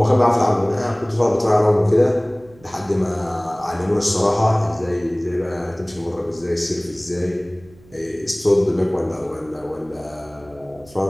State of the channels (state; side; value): noise; right; hum, 26 dB below the sound